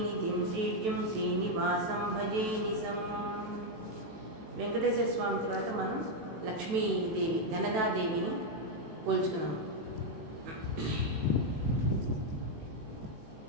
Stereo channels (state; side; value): late; left; 18 ms